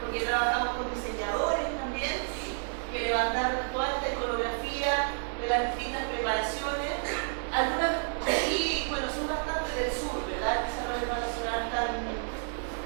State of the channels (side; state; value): left; silent; 58 dB below the other